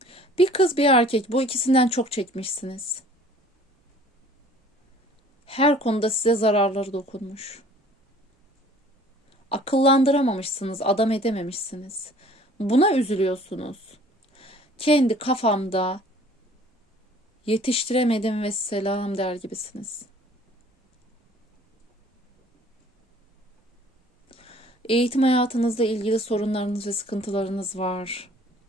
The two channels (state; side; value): normal; both; correlation 0.52